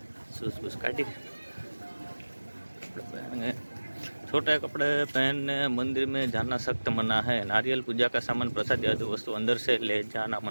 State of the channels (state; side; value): inverted; both; correlation -1.00